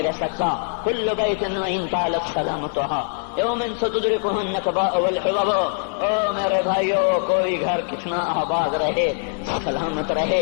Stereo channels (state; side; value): silent; right; 64 dB below the other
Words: رہ سکتا۔ کل بیت وإن طالت سلامتها یوم ستدرکہ النکباء والحباب۔ او میرے بھائیو، کوئی گھر کتنا آباد رہے، سلامت